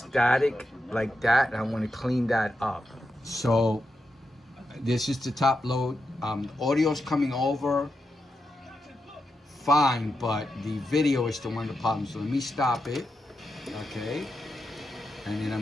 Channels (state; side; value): normal; both; correlation 0.87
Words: like that, and I want to clean that up. So this is the top load. Audio's coming over fine, but the video is the one of the problems. So let me stop it. Okay, and then